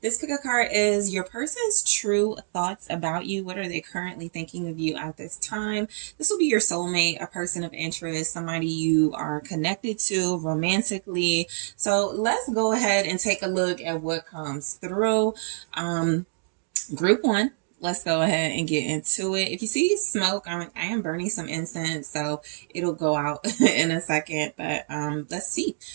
this pick a card is your person's true thoughts about you. What are they currently thinking of you at this time? This will be your soulmate, a person of interest, somebody you are connected to romantically. So, let's go ahead and take a look at what comes through. Group one. Let's go ahead and get into it. If you see smoke, I am burning some incense, so it'll go out in a second. But let's see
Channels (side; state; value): left; silent; digital silence